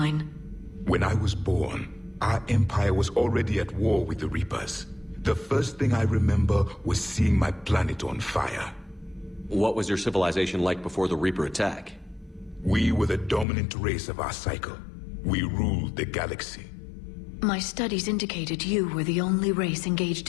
When I was born, our empire was already at war with the Reapers. The first thing I remember was seeing my planet on fire. What was your civilization like before the Reaper attack? We were the dominant race of our cycle. We ruled the galaxy. My studies indicated you were the only race engaged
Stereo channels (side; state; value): right; drops out; at 13.5 s